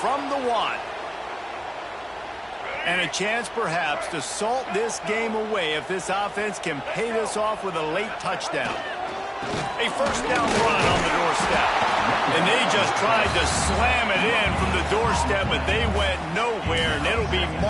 the 1. And a chance perhaps to salt this game away if this offense can pay this off with a late touchdown. A 1st down run on the doorstep. And they just tried to slam it in from the doorstep, but they went nowhere, and it'll be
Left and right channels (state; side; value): identical; both; correlation 1.00